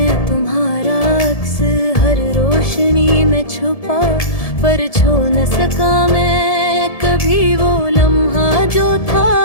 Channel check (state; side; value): late; right; 1.7 ms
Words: तुम्हारा अक्स हर रोशनी में छुपा, पर छू न सका मैं कभी वो लम्हा जो था